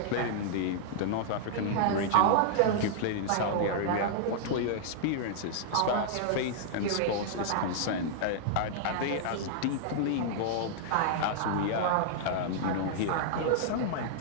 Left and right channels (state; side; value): different; both; correlation -0.01